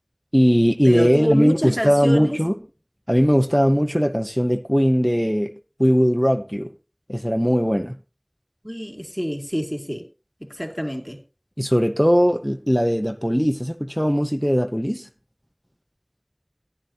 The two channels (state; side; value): identical; both; correlation 1.00